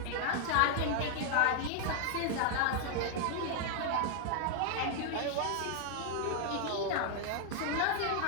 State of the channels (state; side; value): different; both; correlation 0.00